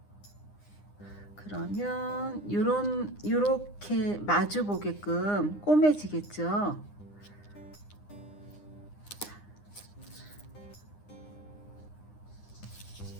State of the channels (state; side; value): late; right; 9.8 ms